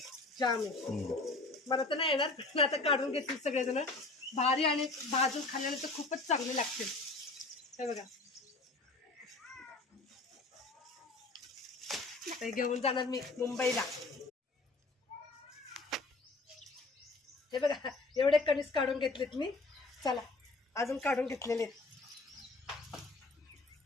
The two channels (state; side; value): quieter; right; 3.3 dB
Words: जाम आहे, मला तर नाही येणार, पण आता काढून घेतील सगळेजण. भारी आणि भाजून खाल्ल्याने तर खूपच चांगले लागतील. हे बघा ते घेऊन जाणार मी मुंबईला. हे बघा एवढे कणीस काढून घेतलेत मी. चला अजून काढून घेतलेले.